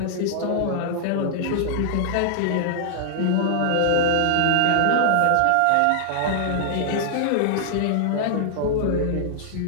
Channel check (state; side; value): different; both; correlation -0.01